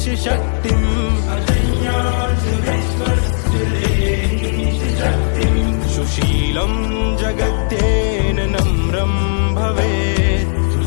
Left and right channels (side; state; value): right; silent; digital silence